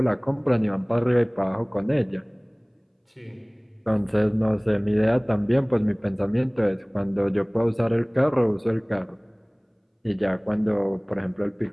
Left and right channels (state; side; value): identical; both; correlation 1.00